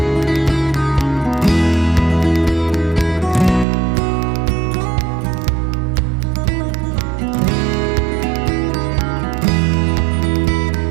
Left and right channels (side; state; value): left; drops out; at 3.7 s